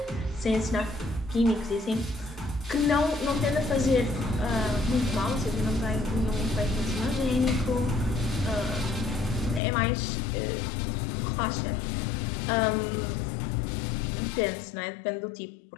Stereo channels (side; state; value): right; drops out; at 9.6 s